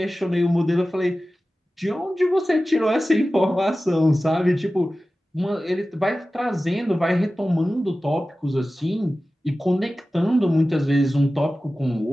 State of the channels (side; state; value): both; normal; correlation 0.95